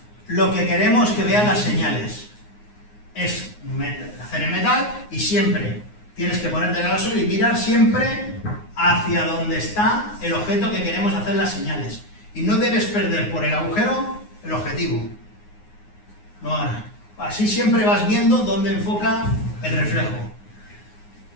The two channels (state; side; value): late; right; 9.6 ms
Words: lo que queremos que vean las señales. Es hacer en metal y siempre tienes que ponerte en el suelo y mirar siempre hacia donde está el objeto que queremos hacer las señales. Y no debes perder por el agujero el objetivo. No, así siempre vas viendo dónde enfoca el reflejo.